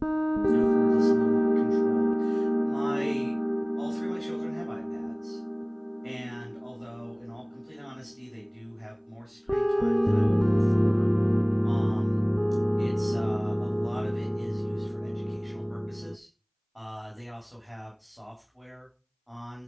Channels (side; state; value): both; identical; correlation 1.00